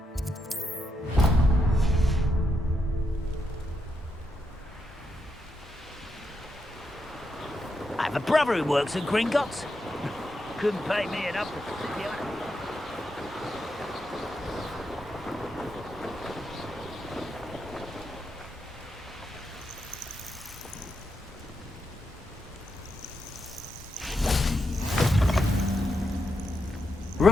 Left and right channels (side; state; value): both; normal; correlation 0.83